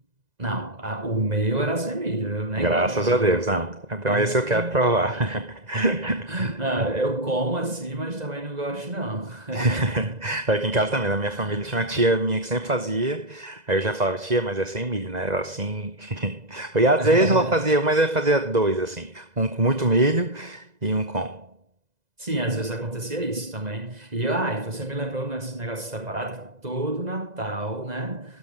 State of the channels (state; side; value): late; left; 2.0 ms